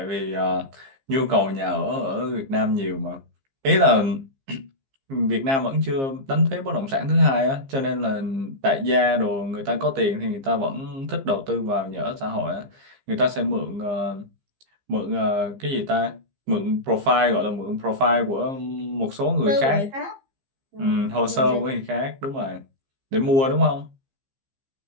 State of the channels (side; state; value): left; late; 15 ms